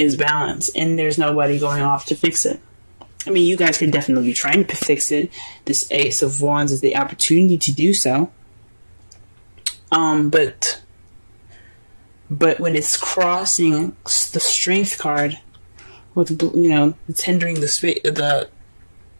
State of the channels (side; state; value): both; inverted; correlation -1.00